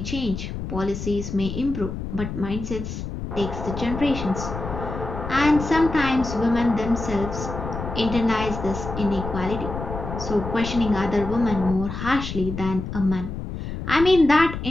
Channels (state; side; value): noise; left; rumble, 7 dB below the sound